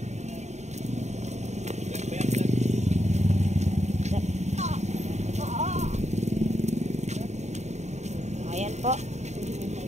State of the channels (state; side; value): late; left; 0.33 ms